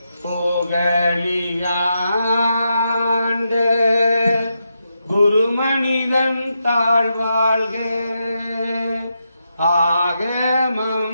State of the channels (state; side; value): inverted; both; correlation -0.84